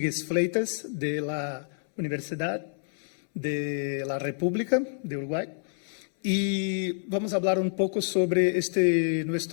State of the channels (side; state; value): right; silent; 59 dB below the other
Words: Fleitas, de la Universidad de la República de Uruguay. Y vamos a hablar un poco sobre